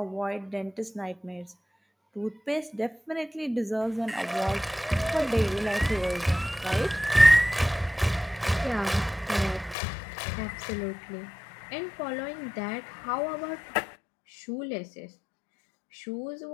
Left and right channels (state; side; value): drops out; right; at 9.8 s